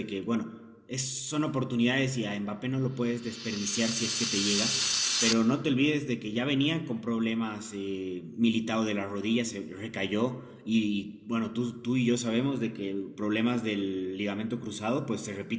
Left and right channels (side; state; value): both; identical; correlation 1.00